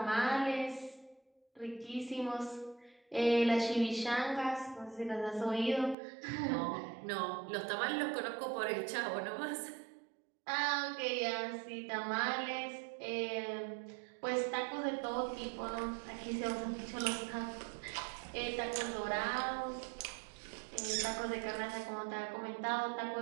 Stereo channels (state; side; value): drops out; left; at 6.0 s